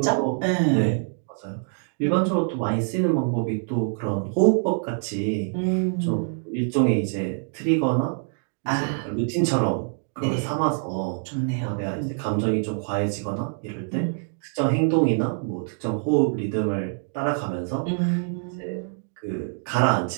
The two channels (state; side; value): silent; left; 61 dB below the other